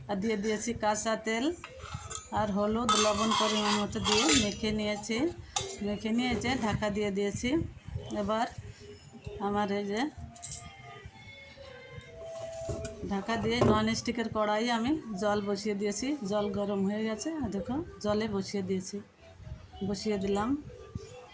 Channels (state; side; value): identical; both; correlation 1.00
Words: আর দিয়ে দিয়েছি কাঁচা তেল আর হলুদ লবণ পরিমাণ মতো দিয়ে মেখে নিয়েছে ঢাকা দিয়ে দিয়েছি। এবার আমার এই যে ঢাকা দিয়ে নন স্টিকের কড়াই আমি জল বসিয়ে দিয়েছি। জল গরম হয়ে গেছে, আর দেখো জলে বসিয়ে দিলাম।